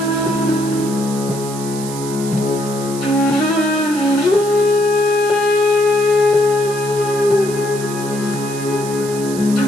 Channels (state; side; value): noise; right; hiss, 12 dB below the sound